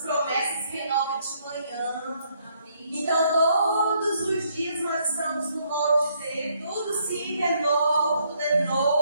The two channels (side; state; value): both; inverted; correlation -0.70